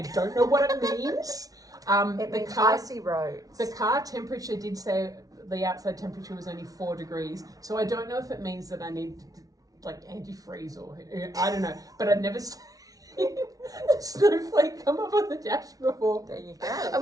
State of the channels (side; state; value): left; late; 0.18 ms